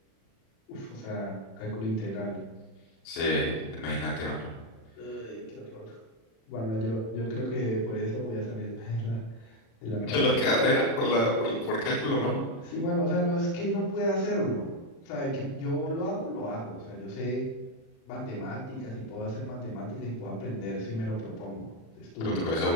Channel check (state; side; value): late; right; 36 ms